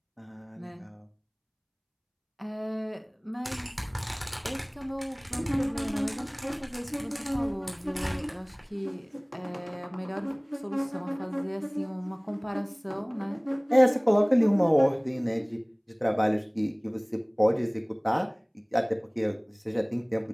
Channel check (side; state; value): both; identical; correlation 1.00